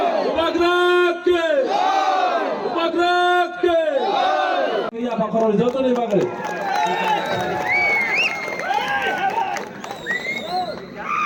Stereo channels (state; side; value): identical; both; correlation 1.00